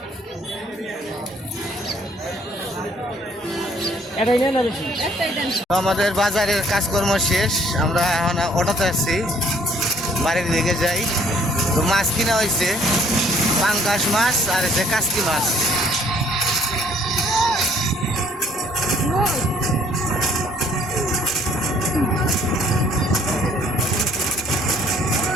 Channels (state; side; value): normal; both; correlation 0.61